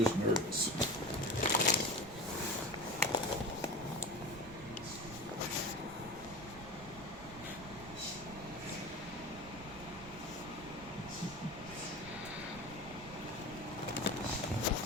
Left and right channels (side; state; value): right; noise; rumble, 17 dB below the sound